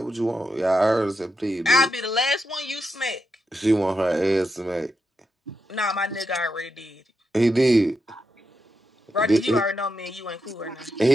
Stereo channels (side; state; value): both; normal; correlation 0.85